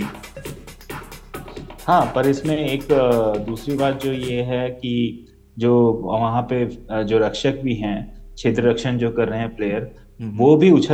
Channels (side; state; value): both; identical; correlation 1.00